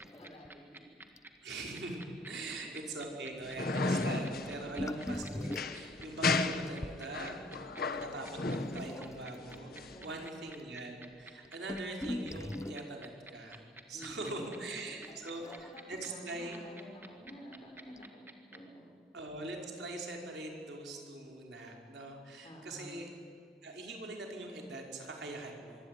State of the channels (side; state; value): both; normal; correlation 0.55